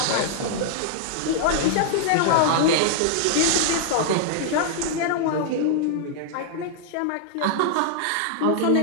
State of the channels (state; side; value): different; both; correlation -0.01